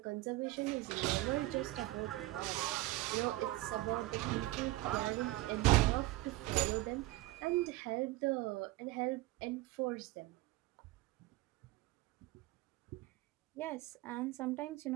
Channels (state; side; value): quieter; left; 18.6 dB